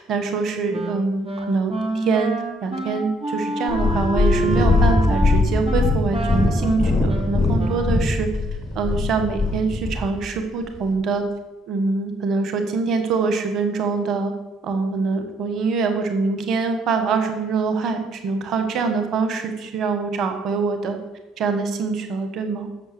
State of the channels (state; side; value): normal; both; correlation 0.68